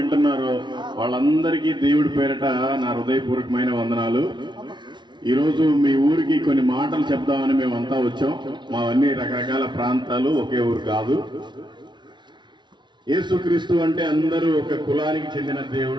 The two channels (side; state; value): left; late; 0.22 ms